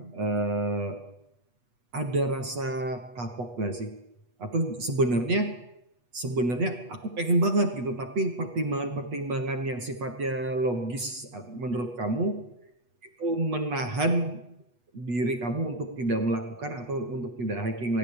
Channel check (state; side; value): late; left; 8.2 ms